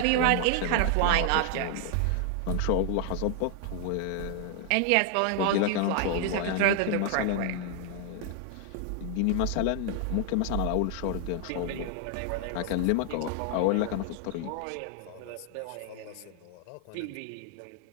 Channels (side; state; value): both; different; correlation 0.00